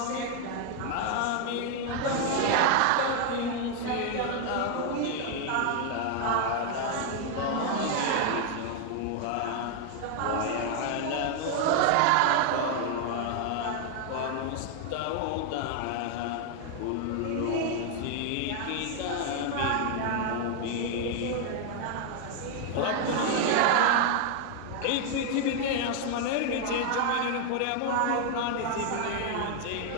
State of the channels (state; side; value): different; both; correlation 0.00